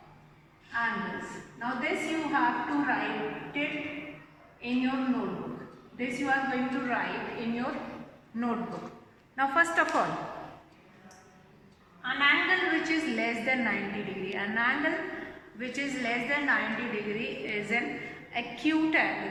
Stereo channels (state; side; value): identical; both; correlation 1.00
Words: angles. Now this you have to write it in your notebook. This you are going to write in your notebook. Now first of all, an angle which is less than 90 degree. An angle which is less than 90 degree is an acute